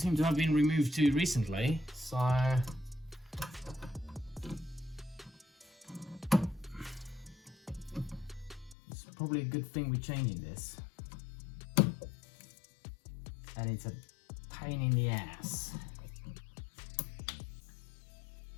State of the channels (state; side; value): drops out; right; at 8.8 s